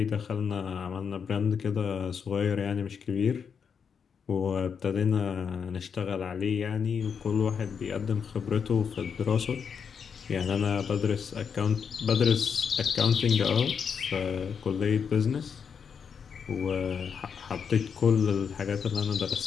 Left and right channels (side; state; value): right; quieter; 6.7 dB